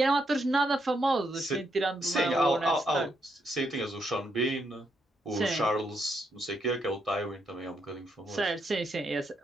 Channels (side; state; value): both; normal; correlation 0.78